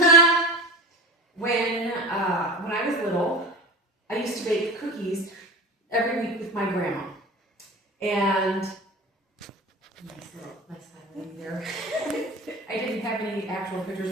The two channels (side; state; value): both; normal; correlation 0.31